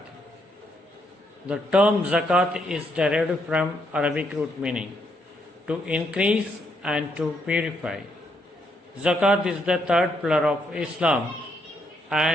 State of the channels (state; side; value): normal; both; correlation 0.75